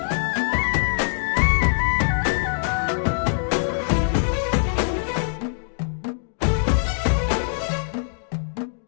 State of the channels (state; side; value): silent; right; digital silence